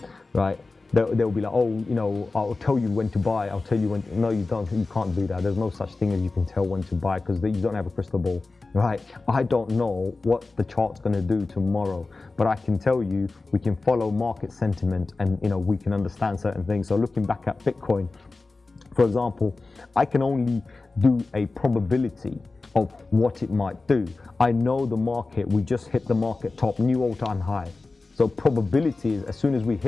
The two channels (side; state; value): right; quieter; 3.6 dB